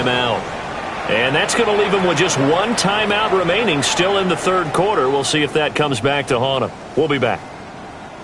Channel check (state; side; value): identical; both; correlation 1.00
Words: And that's going to leave them with just one timeout remaining still in the third quarter. We'll see if that comes back to haunt them. We'll be back.